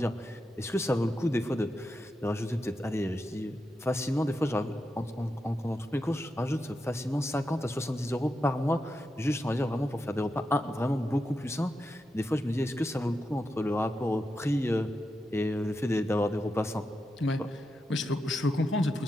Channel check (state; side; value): normal; both; correlation 0.87